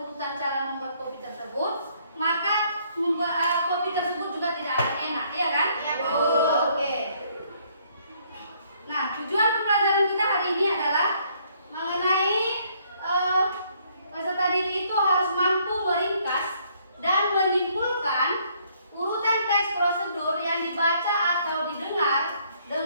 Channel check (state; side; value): inverted; both; correlation -0.66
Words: cara membuat kopi tersebut, maka membuat kopi tersebut juga tidak akan enak, iya kan? Iya, Bu. Oke. Nah, tujuan pembelajaran kita hari ini adalah mengenai peserta didik itu harus mampu meringkas dan menyimpulkan urutan teks prosedur yang dibaca atau didengar